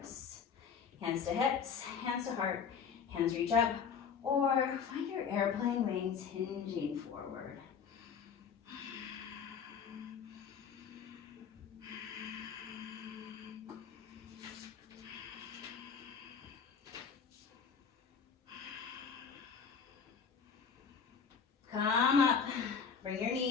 Hands to hips, hands to heart. Hands reach up. Or find your airplane wings hinging forward. Come up. Bring your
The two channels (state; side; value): quieter; right; 6.5 dB